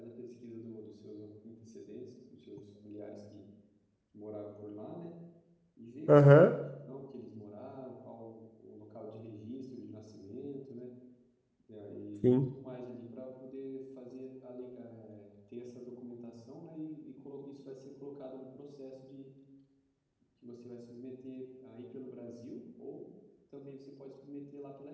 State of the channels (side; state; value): both; identical; correlation 1.00